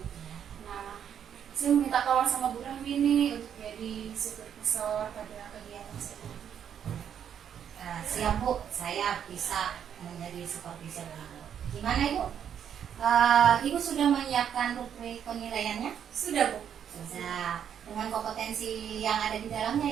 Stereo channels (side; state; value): left; quieter; 8.7 dB